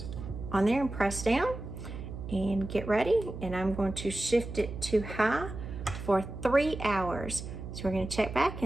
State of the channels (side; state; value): right; noise; hum, 9 dB below the sound